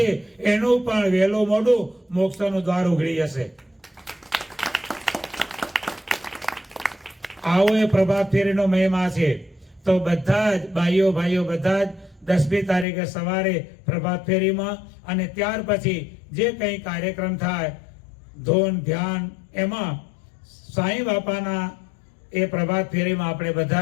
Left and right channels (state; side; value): drops out; right; at 12.9 s